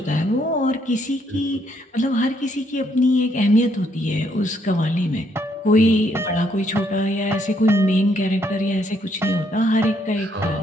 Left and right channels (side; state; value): both; normal; correlation 0.71